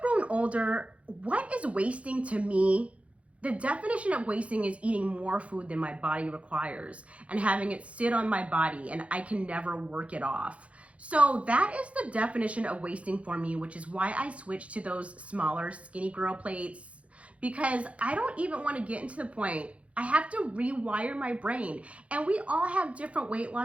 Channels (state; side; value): late; left; 0.063 ms